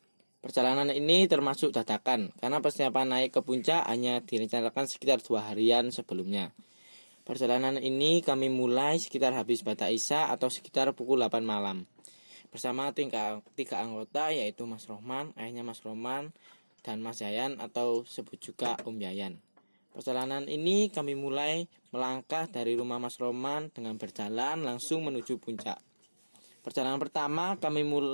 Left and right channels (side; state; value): both; inverted; correlation -1.00